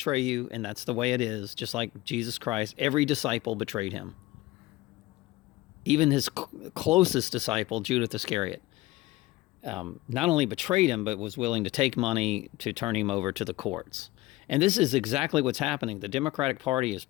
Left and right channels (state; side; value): quieter; right; 18.9 dB